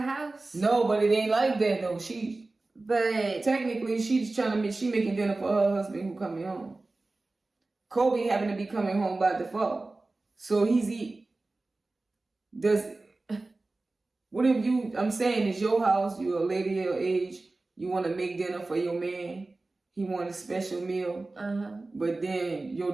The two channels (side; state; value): left; quieter; 3.2 dB